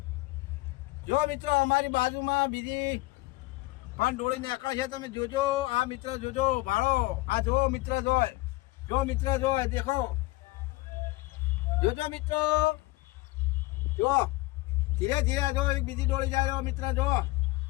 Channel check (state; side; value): quieter; right; 21.0 dB